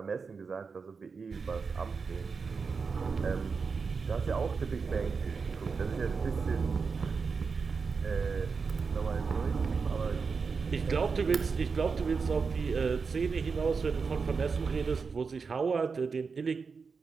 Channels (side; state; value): left; quieter; 5.1 dB